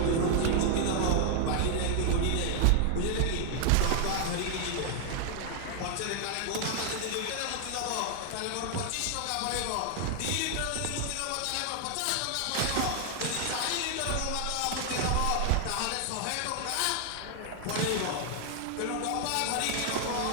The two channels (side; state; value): both; different; correlation 0.00